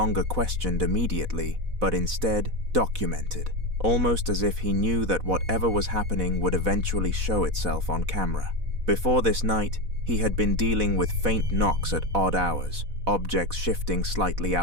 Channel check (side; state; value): left; late; 4.1 ms